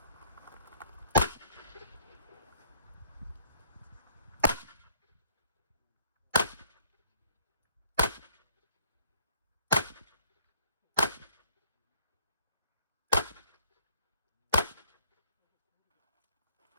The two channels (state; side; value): inverted; both; correlation -0.59